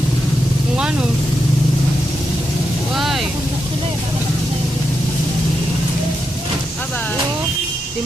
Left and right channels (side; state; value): both; normal; correlation 0.85